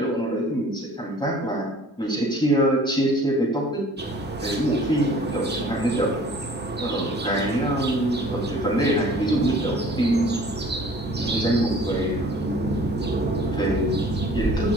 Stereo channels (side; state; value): both; normal; correlation 0.50